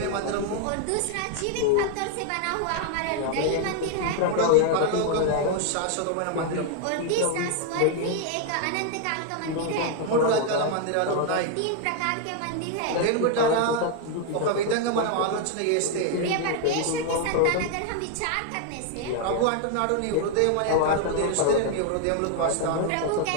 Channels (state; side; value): different; both; correlation 0.00